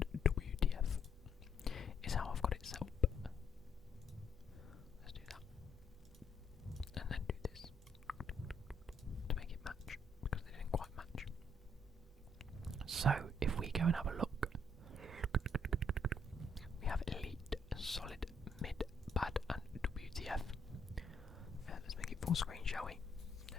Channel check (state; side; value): normal; both; correlation 0.70